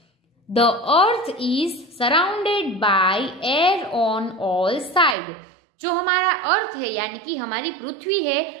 The earth is surrounded by air on all side, जो हमारा अर्थ है यानी कि हमारी पृथ्वी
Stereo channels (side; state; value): left; drops out; at 5.2 s